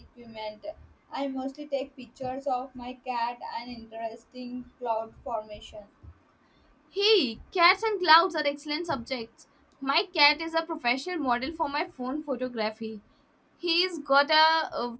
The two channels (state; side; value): identical; both; correlation 1.00